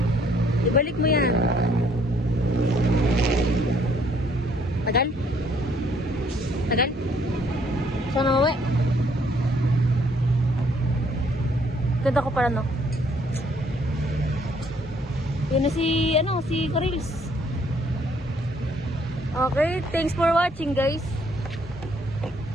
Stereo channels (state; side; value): normal; both; correlation 0.65